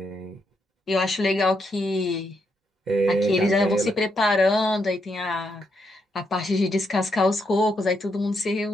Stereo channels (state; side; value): normal; both; correlation 0.79